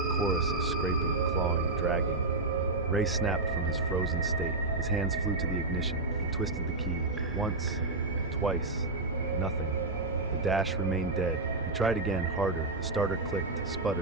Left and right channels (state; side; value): quieter; left; 3.2 dB